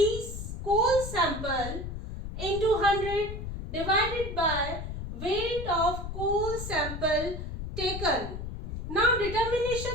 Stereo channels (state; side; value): noise; left; rumble, 7 dB below the sound